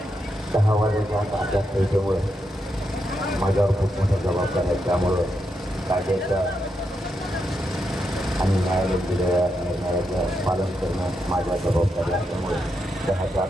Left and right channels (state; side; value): normal; both; correlation 0.83